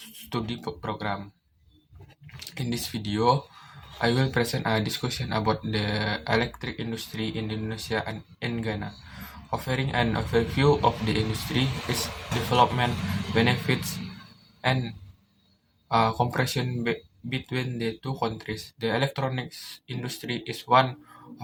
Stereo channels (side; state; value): both; identical; correlation 1.00